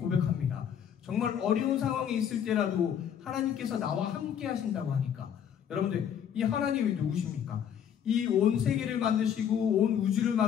정말 어려운 상황에 있을 때라도 하나님께서 나와 함께 하신다고 하니까, 여러분들, 이 하나님이 누구십니까? 이 온 세계를 만드시고 온 우주를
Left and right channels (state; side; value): quieter; right; 8.7 dB